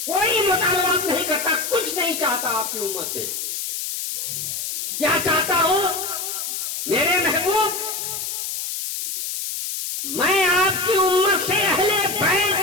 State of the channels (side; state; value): left; noise; hiss, 4 dB below the sound